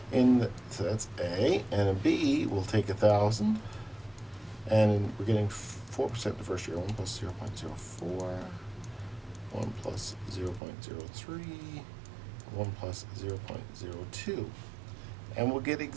So that's A, and a B, we'll take 1,000, and we're getting 4% the first year. 1 plus 0.04, 1 plus 0.03, 1 plus 0.02, and we'll get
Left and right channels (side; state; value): left; drops out; at 10.6 s